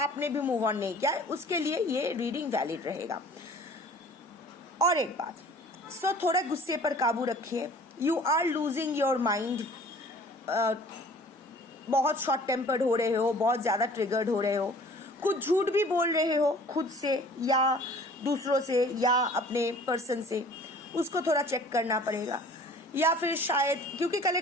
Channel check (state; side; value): normal; both; correlation 0.49